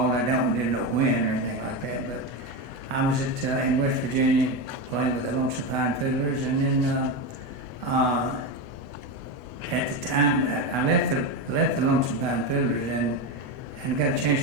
I didn't know when or anything like that, but I was in West Virginia playing with the Lonesome Pine Fiddlers, and then at the time I left the Lonesome Pine Fiddlers and got a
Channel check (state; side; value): late; left; 8.0 ms